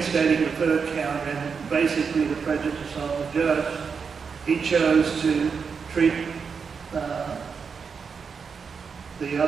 the third count and basically the prejudice of the judge, he chose to treat the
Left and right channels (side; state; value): left; quieter; 5.8 dB